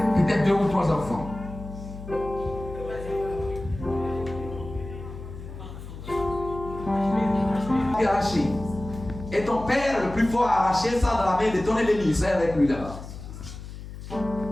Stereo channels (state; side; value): noise; left; hum, 12 dB below the sound